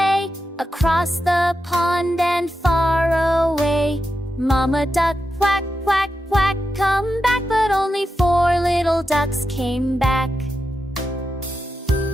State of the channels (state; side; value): normal; both; correlation 0.88